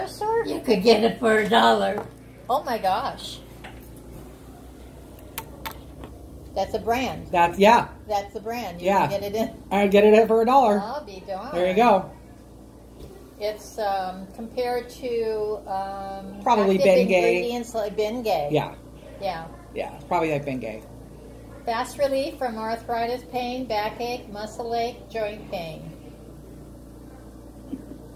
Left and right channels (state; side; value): identical; both; correlation 1.00